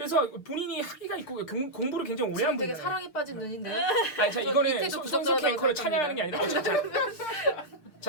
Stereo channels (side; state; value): right; late; 6.6 ms